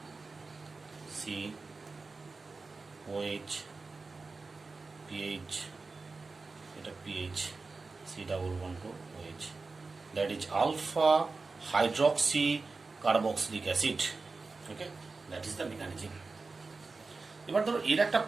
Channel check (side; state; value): left; quieter; 4.0 dB